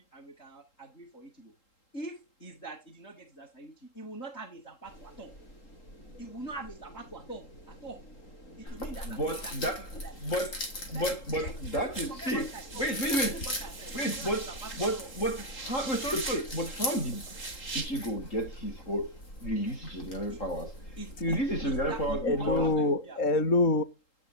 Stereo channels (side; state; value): right; late; 3.8 ms